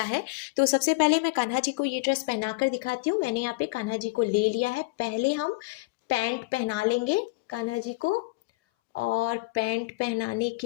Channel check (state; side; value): quieter; right; 24.9 dB